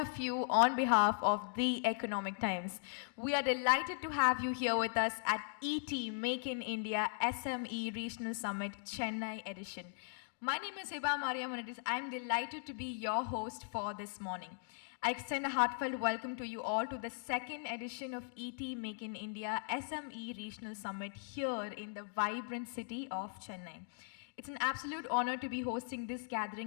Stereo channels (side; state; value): right; silent; digital silence